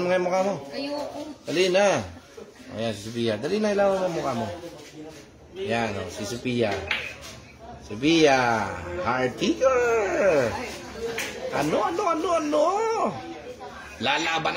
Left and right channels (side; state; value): both; identical; correlation 1.00